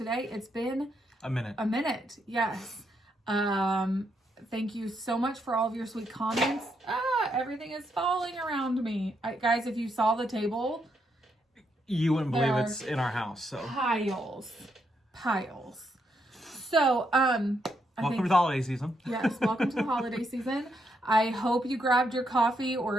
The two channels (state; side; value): normal; both; correlation 0.78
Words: It's been a minute. Yes. Thank you so much for all of your sweet comments. Everything is falling around me. Guys, if you saw the table, you wouldn't believe it's in our house. So piles. So, welcome to the holiday season. Yes, welcome to the holiday season. I hope you grabbed your coffee